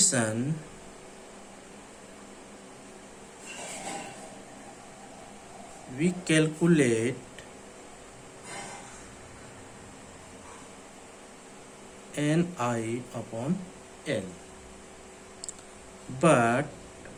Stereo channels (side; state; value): both; identical; correlation 1.00